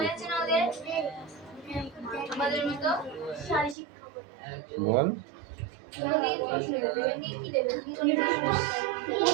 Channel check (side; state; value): left; drops out; at 3.8 s